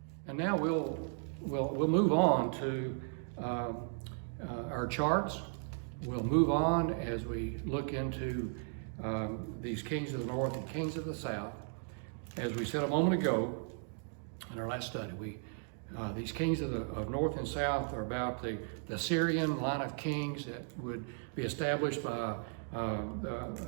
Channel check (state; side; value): silent; left; 54 dB below the other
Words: And now we'll move on to our charts. We'll move on as we look into these kings of the north and kings of the south. As we said a moment ago in our last study, these kings of north and south are about the Syrian line of kings that would be established by